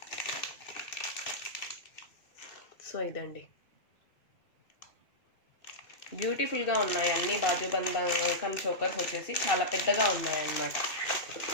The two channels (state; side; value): late; right; 2.6 ms